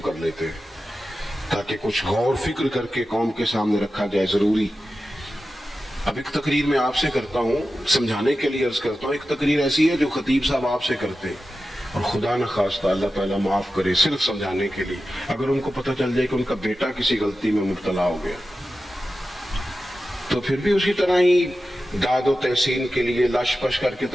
کر لیتے ہیں تاکہ کچھ غور فکر کر کے قوم کے سامنے رکھا جائے, ضروری. اب ایک تقریر میں آپ سے کرتا ہوں, سمجھانے کے لیے عرض کرتا ہوں. ایک تقریر ایسی ہے جو خطیب صاحب آپ سے کرتے ہیں, اور خدا نہ خواستہ اللہ تعالیٰ معاف کرے, صرف سمجھانے کے لیے. اگر ان کو پتہ چل جائے کہ ان کا بیٹا کسی غلطی میں مبتلا ہو گیا تو پھر بھی اسی طرح ہی داد و تحسین کے لیے لاش پش کر کے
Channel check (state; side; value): normal; both; correlation 0.93